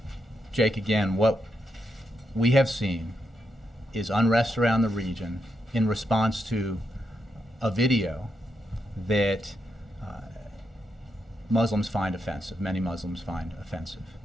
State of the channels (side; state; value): both; normal; correlation 0.83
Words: Jake, again, what we have seen is unrest around the region in response to a video that Muslims find offensive, many Muslims find offensive.